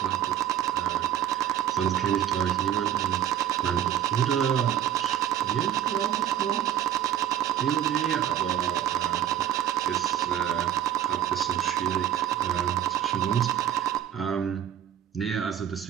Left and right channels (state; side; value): quieter; left; 10.9 dB